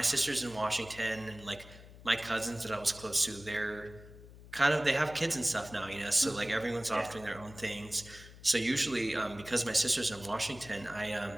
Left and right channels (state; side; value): noise; left; hum, 18 dB below the sound